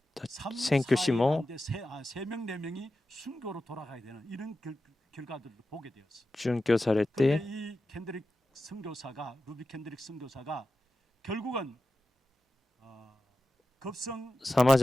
宣教師も殉教されて 선교사가 루비 캔드릭 선교사가 결국은 さま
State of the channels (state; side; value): normal; both; correlation 0.92